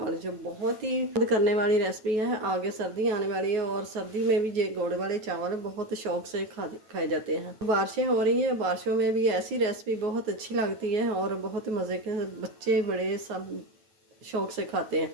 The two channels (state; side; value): late; left; 9.2 ms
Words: जो बहुत ही मदद करने वाली रेसिपी है। आगे सर्दी आने वाली है और सर्दी में भी ये गुड़ वाले चावल बहुत शौक से खाए जाते हैं। बारिशें हो रही हैं, बारिशों में भी ऐसी रेसिपी बहुत अच्छी लगती है और बहुत मज़े के बच्चे बड़े सब शौक से खाते